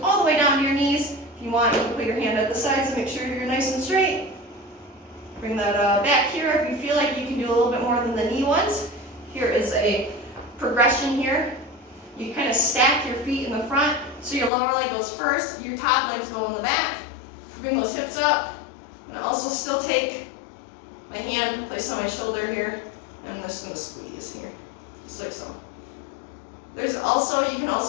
all the way down to your knees. If you want, you can put your hand at the sides and make sure you're nice and straight. Bring that back here if you feel like you can do a little bit more than the knee ones. Here is a progression here. You kind of stack your feet in the front, so your lower leg goes first, your top legs go on the back. Bring those hips up, and also still take my hand, place on my shoulder here, and I'm just going to squeeze here, just like so. There's also, you can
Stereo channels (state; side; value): drops out; right; at 14.5 s